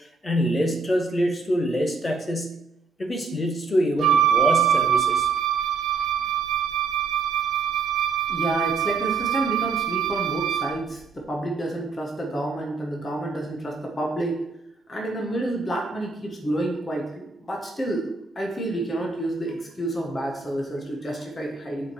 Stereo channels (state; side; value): quieter; left; 4.1 dB